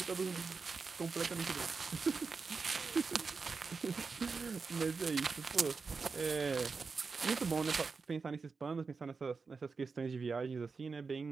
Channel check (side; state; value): left; quieter; 4.7 dB